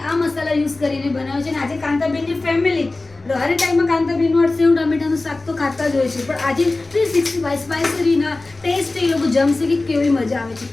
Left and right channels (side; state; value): right; quieter; 3.2 dB